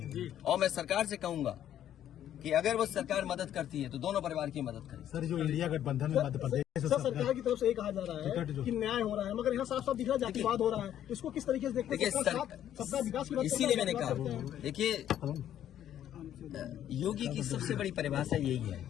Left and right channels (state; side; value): quieter; right; 11.0 dB